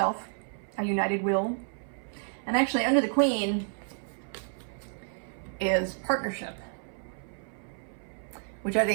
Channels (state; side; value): silent; left; 57 dB below the other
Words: a united will. And actually under the Queen is partnership, which I